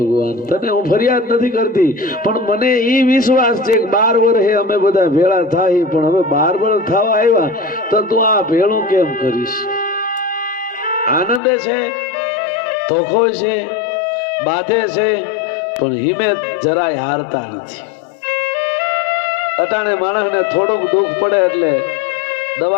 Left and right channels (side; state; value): right; drops out; at 11.4 s